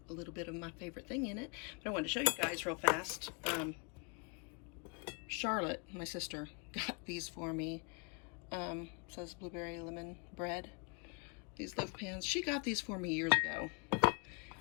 a little bit of my favorite thing in it. But I wanted to show you guys real fast. Charlotte, my sister, got these for me. Says blueberry lemon bread. These loaf pans. She got these for me years ago.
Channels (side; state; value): right; quieter; 34.9 dB